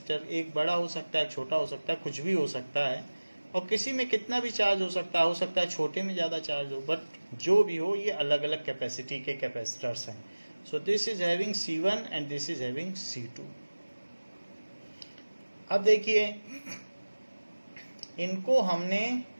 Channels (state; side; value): inverted; both; correlation -1.00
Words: एक बड़ा हो सकता है, छोटा हो सकता है, कुछ भी हो सकता है, और किसी में कितना भी चार्ज हो सकता है छोटे में ज़्यादा चार्ज हो, बट जो भी हो ये अलग अलग कैपेसिटी के कैपेसिटर्स हैं. सो this is having C1 and this is having C2. अब देखिए इनको हमने